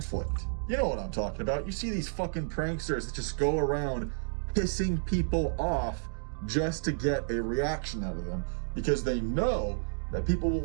You know what I'm talking about. You see these fucking pranksters that just go around pissing people off just to get a reaction out of them, because they know that people will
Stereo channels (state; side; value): silent; left; digital silence